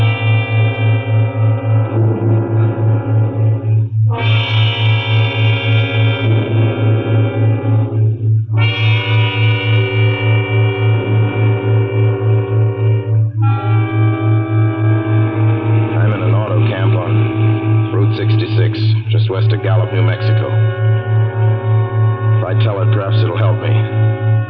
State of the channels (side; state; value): both; identical; correlation 1.00